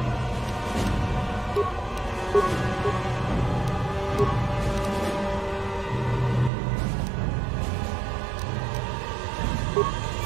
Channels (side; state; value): left; drops out; at 6.5 s